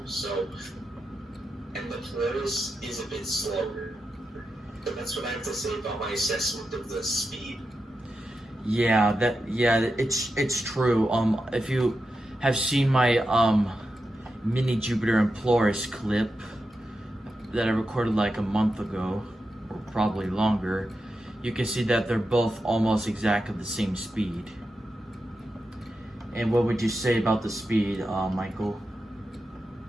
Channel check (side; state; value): both; normal; correlation 0.89